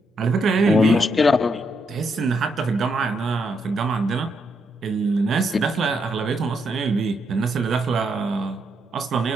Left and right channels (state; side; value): normal; both; correlation 0.78